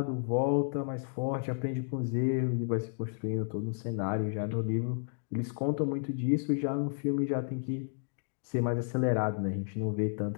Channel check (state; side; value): silent; right; digital silence